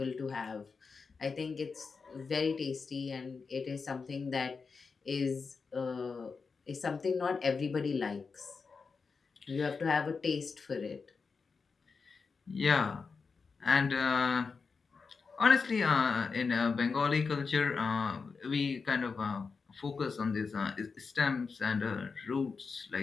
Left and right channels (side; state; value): right; quieter; 4.9 dB